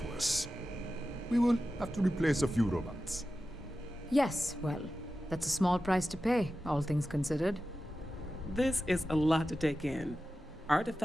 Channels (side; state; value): both; normal; correlation 0.93